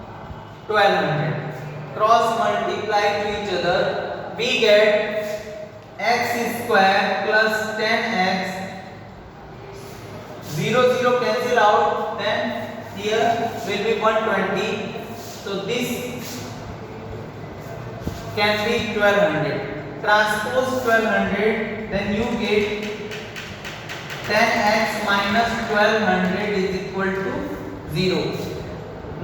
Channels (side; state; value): both; identical; correlation 1.00